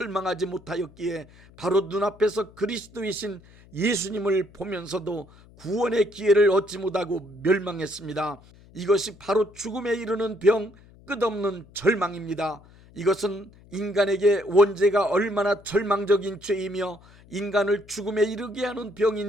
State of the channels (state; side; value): noise; left; hum, 25 dB below the sound